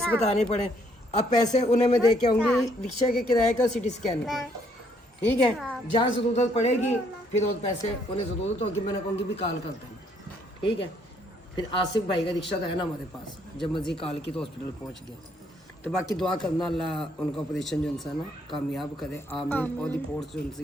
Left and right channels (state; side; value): normal; both; correlation 0.68